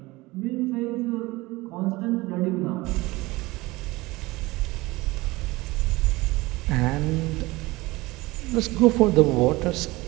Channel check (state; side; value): quieter; left; 21.0 dB